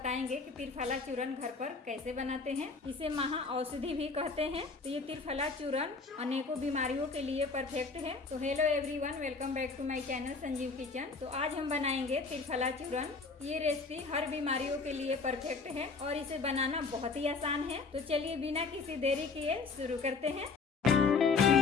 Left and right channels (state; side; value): quieter; right; 4.4 dB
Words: कि त्रिफला चूर्ण घर पर कैसे बनाते हैं। इसे महा औषधि भी कहते हैं। तो ये त्रिफला चूर्ण अनेकों बीमारियों के लिए परफेक्ट है। तो hello everyone, welcome back to my channel Sanjeev kitchen. तो आज हम बनाएंगे त्रिफला चूर्ण। ये रेसिपी हर बीमारियों के लिए परफेक्ट है और इसे बनाना बहुत ही आसान है। तो चलिए बिना किसी देरी किए शुरू करते हैं।